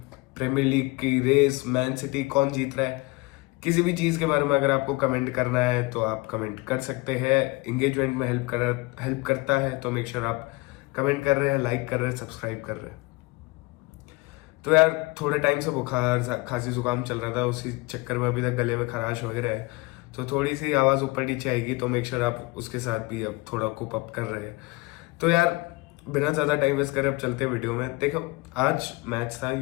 प्रीमियर लीग की रेस, मैन सिटी कौन जीत रहा है, किसी भी चीज़ के बारे में अगर आपको कमेंट करना है तो आप कमेंट कर सकते हैं। इंगेजमेंट में हेल्प करता है, तो मेक श्योर आप कमेंट कर रहे हैं, लाइक कर रहे हैं, सब्सक्राइब कर रहे हैं। तो यार, थोड़े टाइम से बुखार खांसी जुकाम चल रहा था, उसी चक्कर में अभी तक गले में खराश वगैरह है, तो थोड़ी सी आवाज़ ऊपर नीचे आएगी, तो मेक श्योर आप उसके साथ भी अब थोड़ा कोप अप कर रहे हैं। तो यार, बिना ज़्यादा टाइम वेस्ट करे अब चलते हैं वीडियो में। देखो, आज मैच था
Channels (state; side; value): quieter; right; 23.9 dB